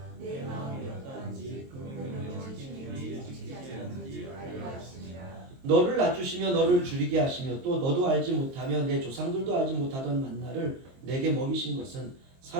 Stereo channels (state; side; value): late; left; 23 ms